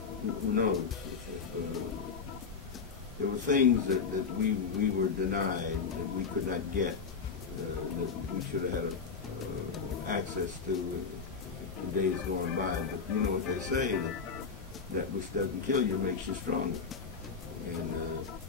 Who knows? There were things that we were denied, that we could not get, that we should have had access to in days going by. But you know what they say, that which doesn't kill you makes you stronger. And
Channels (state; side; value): quieter; right; 5.6 dB